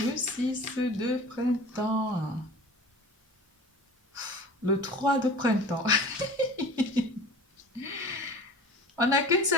6 de printemps. Le 3 de printemps. On n'a qu'une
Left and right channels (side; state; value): both; normal; correlation 0.40